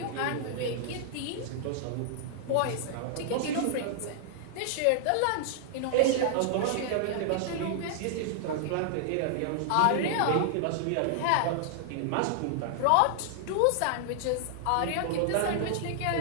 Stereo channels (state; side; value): different; both; correlation -0.01